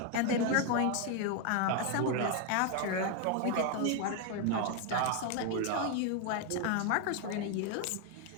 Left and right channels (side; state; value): both; different; correlation 0.01